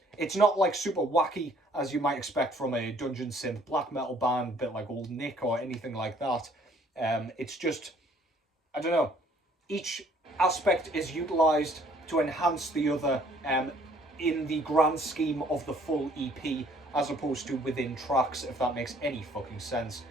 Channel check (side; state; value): both; normal; correlation 0.60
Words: it's not like super wacky as you might expect from a dungeon synth black metal band, a bit like Old Nick or anything like that. It's just, I don't know, each aspect is utilised to enhance the other in the grand scheme of the full EP, as opposed to within tracks, if that makes any fucking sense.